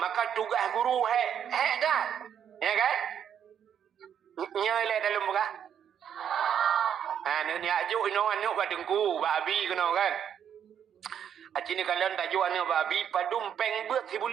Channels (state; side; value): quieter; left; 8.8 dB